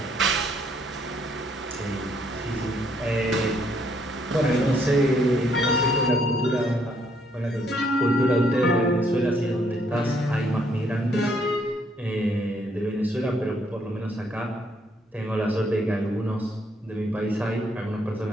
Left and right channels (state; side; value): normal; both; correlation 0.69